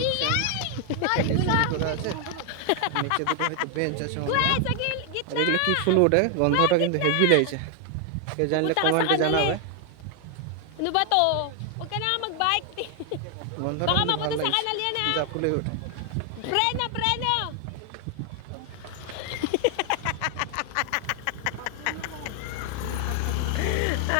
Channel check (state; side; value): different; both; correlation 0.00